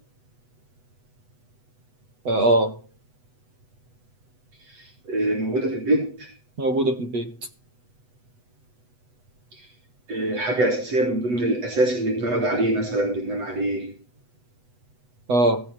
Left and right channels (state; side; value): late; left; 8.1 ms